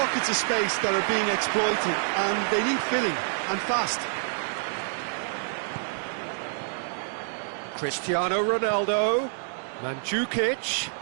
of space that are being exploited, and they need filling, and fast. Cristiano Ronaldo, Mandzukic.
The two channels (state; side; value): silent; left; digital silence